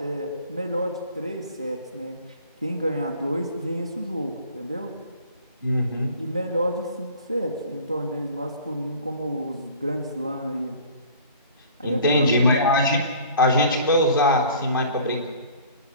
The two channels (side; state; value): both; inverted; correlation -0.47